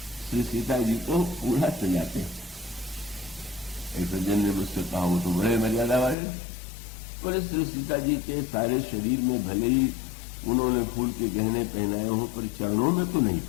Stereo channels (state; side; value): drops out; right; at 6.2 s